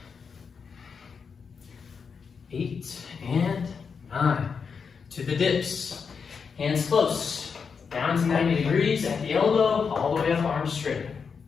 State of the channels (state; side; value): quieter; right; 5.8 dB